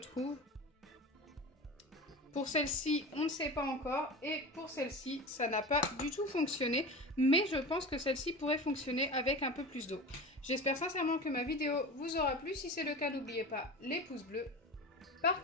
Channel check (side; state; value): both; normal; correlation 0.30